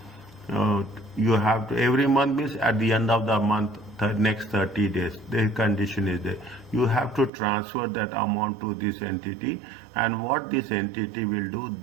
every month means at the end of the month, the next 30 days, the condition is there. You have to transfer that amount to this entity, and what this entity will do,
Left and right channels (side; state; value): left; drops out; at 7.3 s